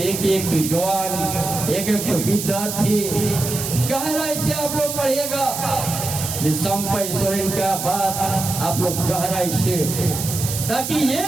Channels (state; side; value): noise; right; hiss, 5 dB below the sound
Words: एक तो जवान, एक तो विद्यार्थी गहराई से आप लोग पढ़िएगा। संपय सोरेन का बात आप लोग गहराई से, ताकि ये